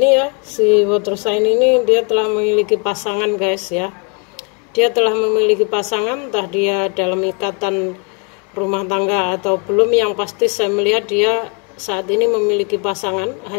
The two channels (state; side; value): quieter; right; 36.2 dB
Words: ya, si water sign ini dia telah memiliki pasangan guys ya. Dia telah memiliki pasangan, entah dia dalam ikatan rumah tangga atau belum. Yang pasti saya melihat dia saat ini memiliki pasangan.